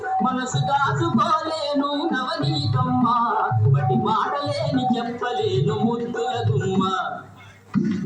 మనసు దాచుకోలేను నవనీతమ్మ బటి మాటలేని చెప్పలేను ముద్దుల గుమ్మ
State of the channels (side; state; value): both; identical; correlation 1.00